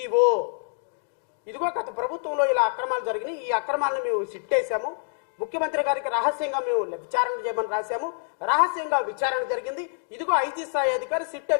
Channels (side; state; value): right; silent; 61 dB below the other